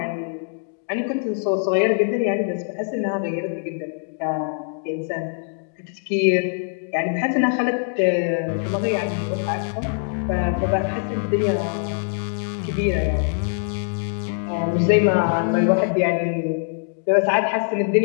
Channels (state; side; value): silent; right; 63 dB below the other